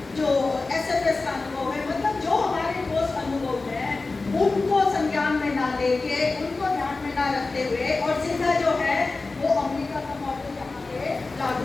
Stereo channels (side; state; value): right; quieter; 3.6 dB